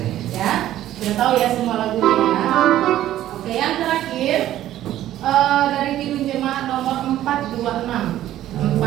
Ya, sudah tahu ya semua lagunya ya. Oke, yang terakhir dari Kidung Jemaat nomor 426.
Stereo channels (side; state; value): left; quieter; 13.1 dB